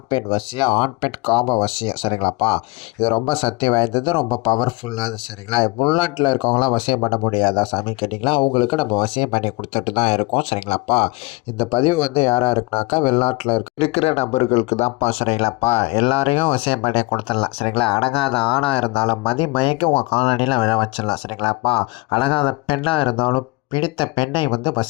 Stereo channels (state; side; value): quieter; right; 24.5 dB